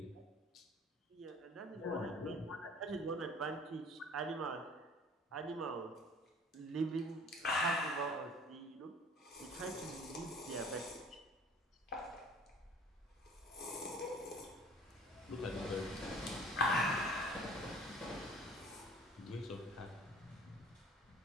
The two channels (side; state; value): both; normal; correlation 0.49